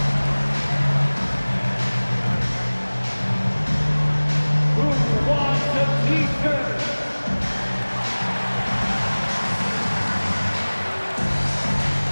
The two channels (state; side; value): inverted; both; correlation -1.00